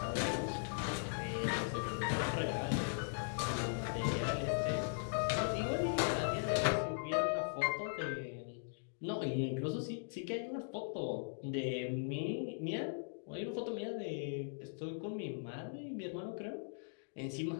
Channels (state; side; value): silent; right; digital silence